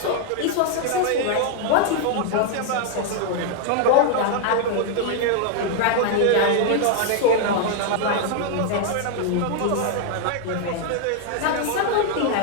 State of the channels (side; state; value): both; different; correlation 0.00